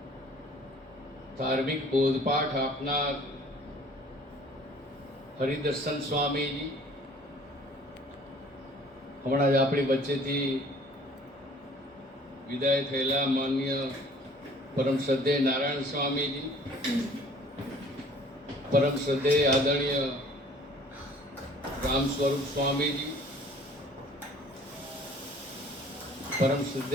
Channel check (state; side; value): normal; both; correlation 0.53